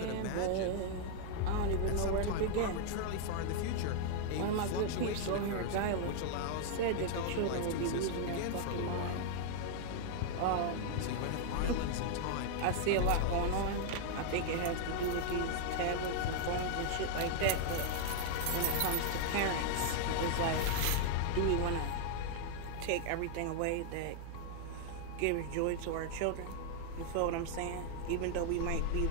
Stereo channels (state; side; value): different; both; correlation -0.01